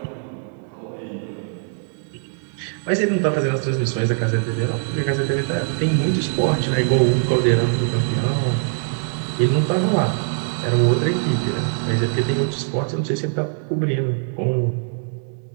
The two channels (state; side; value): silent; left; 63 dB below the other